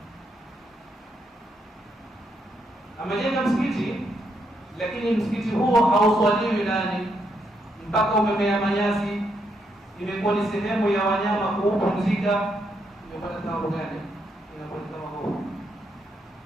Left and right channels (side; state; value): both; normal; correlation 0.78